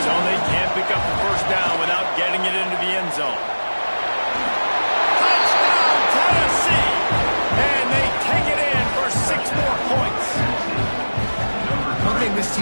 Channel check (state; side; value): inverted; both; correlation -1.00